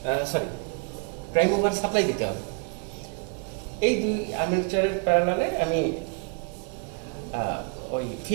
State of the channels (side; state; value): left; quieter; 36.4 dB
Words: প্রাইম মুভার সাপ্লাই দিতে হবে। এই দুই আর্মেচারের প্যারালালে আমি ওই